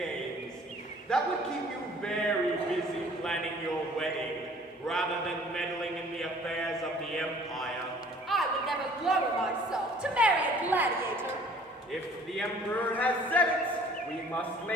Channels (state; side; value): normal; both; correlation 0.53